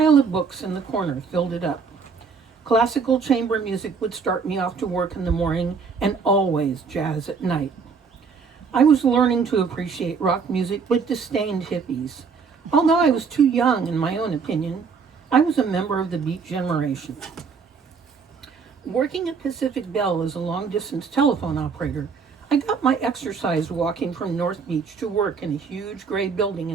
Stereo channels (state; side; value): quieter; left; 5.4 dB